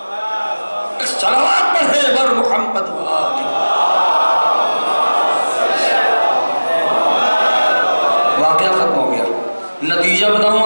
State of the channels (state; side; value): inverted; both; correlation -1.00